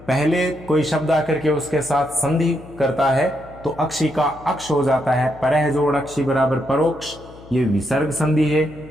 पहले कोई शब्द आकर के उसके साथ संधि करता है तो अक्षी का अक्ष हो जाता है। परह जोड़ अक्षी बराबर परोक्ष। ये विसर्ग संधि है,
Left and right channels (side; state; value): left; noise; hum, 20 dB below the sound